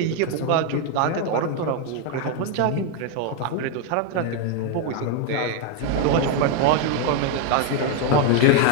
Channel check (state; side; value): different; both; correlation 0.01